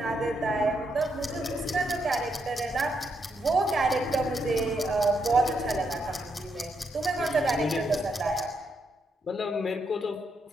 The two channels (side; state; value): both; normal; correlation 0.79